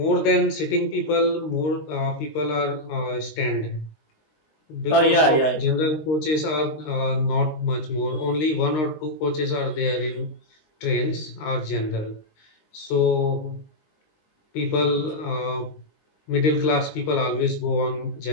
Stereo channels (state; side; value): late; right; 19 ms